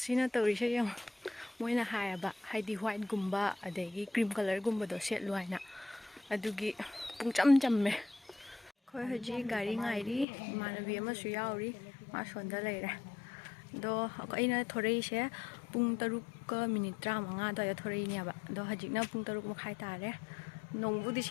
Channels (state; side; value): drops out; right; at 10.2 s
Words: सिना तौरिसे यम मोइना हायबा हाइदी व्हाइट गुम्बा अदगी क्रीम कलर गुम्बदो सेटलु हाइना अदुगी पुंगचम चम्मे खोय हजी गाड़ी गाइरी इमानबी अमसु याउरी मा सोंदा लेरे दो अꯩꯅ थोरैसे पुंग 3:35 दो थोरैनेबा दो हजिकना पुंग 3:30 तारे नोंबुदि